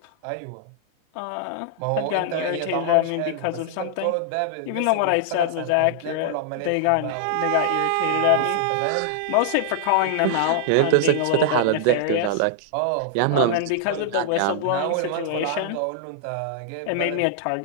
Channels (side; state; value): both; different; correlation -0.01